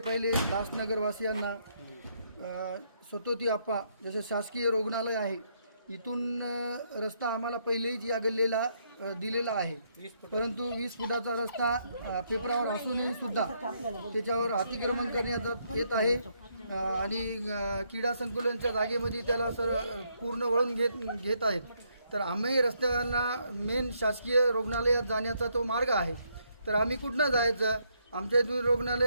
दासनगरवासियांना स्वतोती आप्पा जसे शासकीय रुग्णालय आहे इथून रस्ता आम्हाला पहिलेच या गल्लीला दिलेला आहे, परंतु 20 फुटाचा रस्ता पेपरावर असूनही सुद्धा त्याच्यावर अतिक्रमण करण्यात येत आहे आणि क्रीडा संकुलांच्या जागेमध्ये त्याला पूर्ण वळून घेत आहेत. तर आम्ही रस्त्याला मेन शासकीय रुग्णालयात जाण्याचा तो मार्ग आहे, तर आम्ही कुठनं जायचं? आमच्या इथून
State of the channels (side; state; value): both; inverted; correlation -0.74